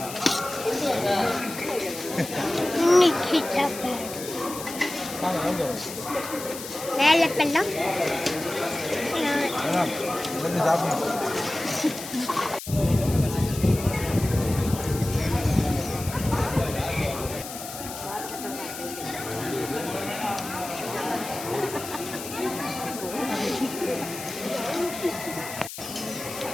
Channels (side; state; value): left; noise; hiss, 10 dB below the sound